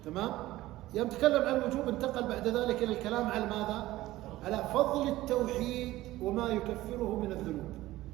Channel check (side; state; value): left; quieter; 16.6 dB